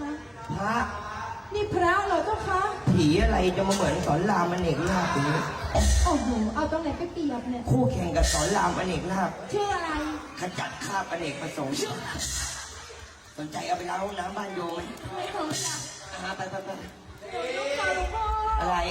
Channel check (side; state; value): both; identical; correlation 1.00